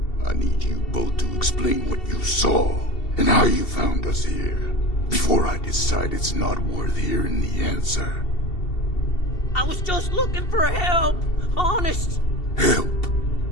I need you both to explain what you saw and how you found us here, before I decide it's not worth hearing the answer. I was just looking for help, honest. Help?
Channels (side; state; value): right; late; 2.7 ms